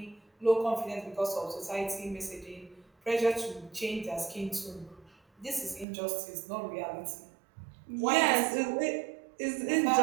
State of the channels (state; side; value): drops out; left; at 5.9 s